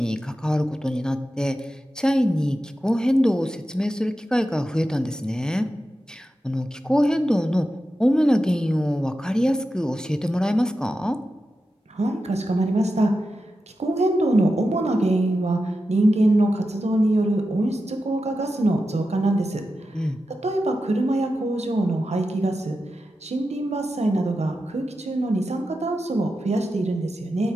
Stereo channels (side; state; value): both; normal; correlation 0.91